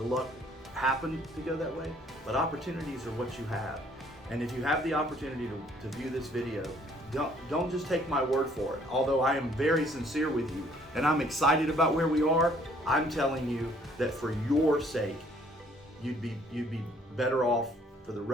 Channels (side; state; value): both; normal; correlation 0.61